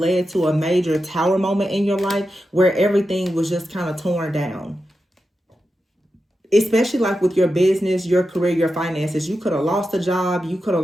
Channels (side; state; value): both; normal; correlation 0.89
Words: to a major tower moment in your life where everything was just kind of torn down. Especially like with your business, your career, your finances. You could have lost a job. You could have